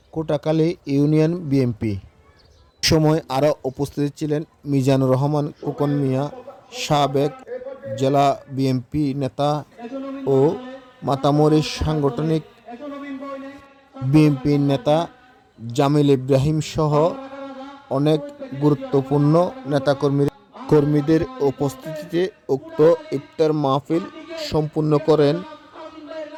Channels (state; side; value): identical; both; correlation 1.00